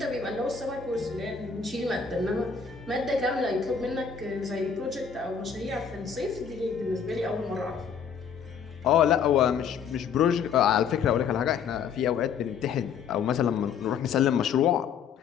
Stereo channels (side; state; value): right; quieter; 6.8 dB